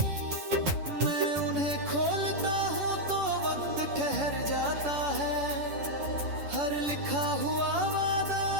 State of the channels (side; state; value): left; late; 10 ms